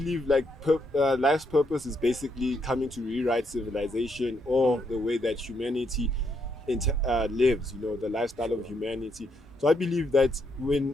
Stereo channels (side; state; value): both; normal; correlation 0.76